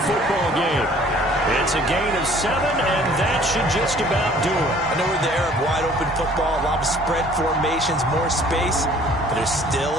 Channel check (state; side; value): normal; both; correlation 0.54